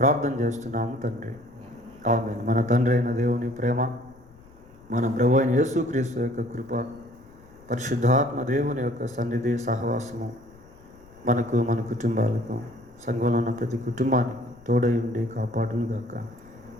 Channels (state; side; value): noise; left; rumble, 25 dB below the sound